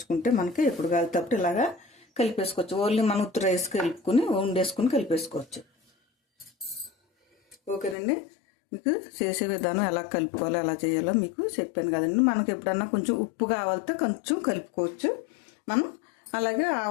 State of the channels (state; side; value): drops out; right; at 8.0 s